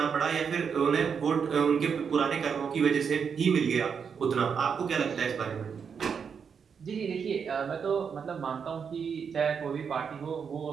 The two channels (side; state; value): left; quieter; 6.6 dB